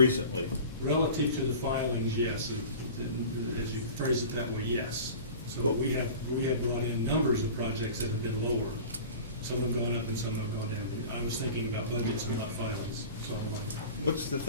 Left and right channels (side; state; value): both; inverted; correlation -0.38